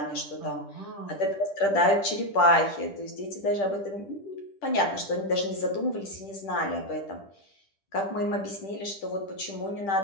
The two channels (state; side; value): late; right; 10 ms